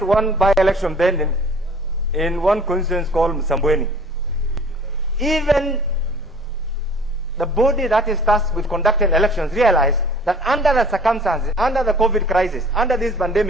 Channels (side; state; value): both; normal; correlation 0.49